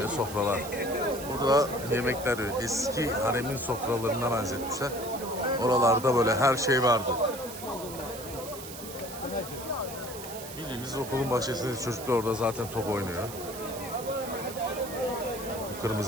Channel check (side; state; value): right; noise; hiss, 12 dB below the sound